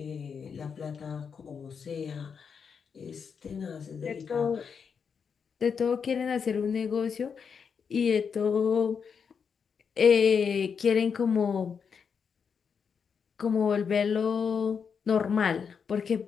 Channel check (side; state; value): right; quieter; 6.4 dB